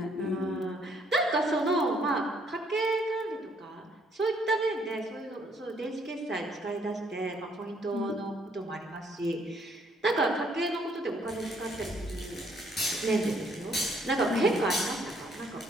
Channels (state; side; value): normal; both; correlation 0.67